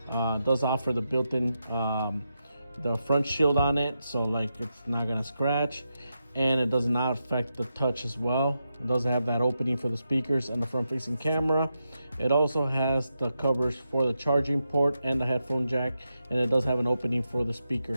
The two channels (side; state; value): both; inverted; correlation -0.87